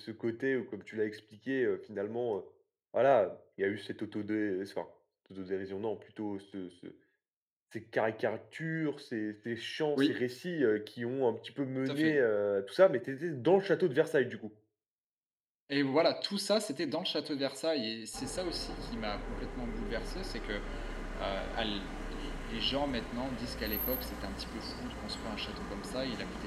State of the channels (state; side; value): identical; both; correlation 1.00